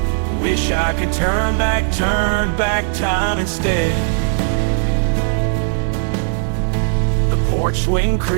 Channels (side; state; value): left; silent; 62 dB below the other